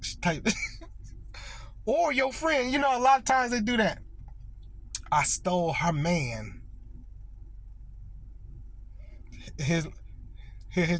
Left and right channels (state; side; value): identical; both; correlation 1.00